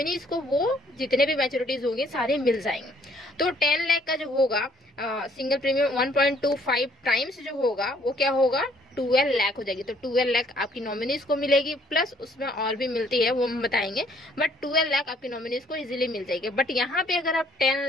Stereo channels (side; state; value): both; normal; correlation 0.63